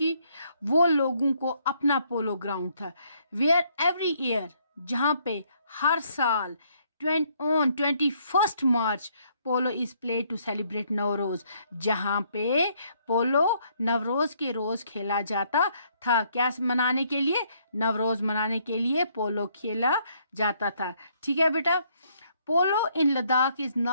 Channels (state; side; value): inverted; both; correlation -0.68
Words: वो लोगों को अपना पोलो ग्राउंड था। वेयर एवरी ईयर, जहाँ पे हर साल on 21 March polo is play to celebrate Navroz, जहाँ पे पोलो नवरोज के रोज खेला जाता था। क्या मनाने के लिए? नवरोज मनाने के लिए पोलो खेला जाता था। ठीक है बेटा। Polo in Ladakh is